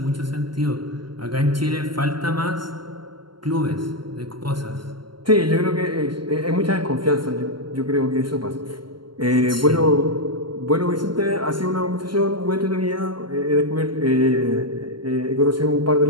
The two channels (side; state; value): left; late; 0.72 ms